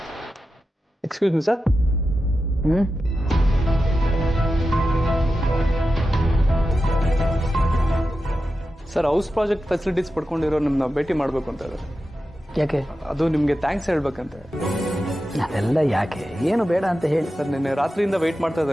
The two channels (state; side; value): normal; both; correlation 0.91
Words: Excuse me sir. Sir, house project facilities ಪಡ್ಕೊಂಡಿರೋ ನಿಮ್ಮನ್ನ ಭೇಟಿ ಮಾಡಬೇಕು ಅಂತ ಇದ್ದಾರೆ. ಯಾಕೆ? ಅದು ನಿಮಗೆ ಥ್ಯಾಂಕ್ಸ್ ಹೇಳ್ಬೇಕಂತ. ಅದೆಲ್ಲ ಯಾಕೆ? ಏನು ಬೇಡ ಅಂತ ಹೇಳಿ. ಸರ್, ನಿನ್ನೆ ರಾತ್ರಿಯಿಂದ ವೆಯ್ಟ್ ಮಾಡ್ತಾ